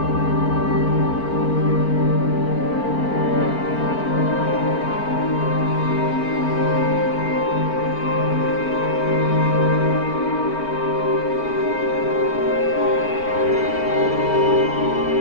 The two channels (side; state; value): right; late; 4.4 ms